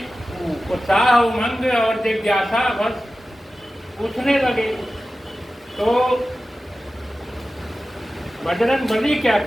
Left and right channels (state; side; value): normal; both; correlation 0.95